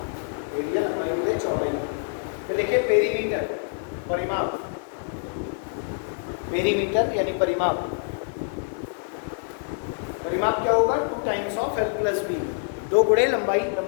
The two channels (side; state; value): right; silent; digital silence